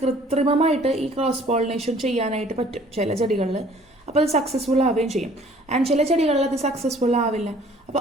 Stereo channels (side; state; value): both; normal; correlation 0.55